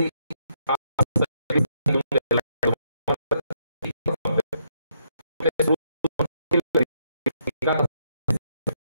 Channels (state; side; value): inverted; both; correlation -0.75